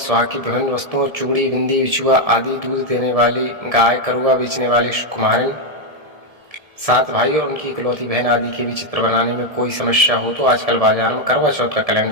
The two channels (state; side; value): late; left; 1.7 ms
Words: की विभिन्न वस्तुओं, चूड़ी, बिंदी, बिछुआ आदि, दूध देने वाली गाय, करुआ बेचने वाली कुम्हारिन, 7 भाई और उनकी इकलौती बहन आदि के भी चित्र बनाने में कोई समस्या हो तो आजकल बाजार में करवा चौथ का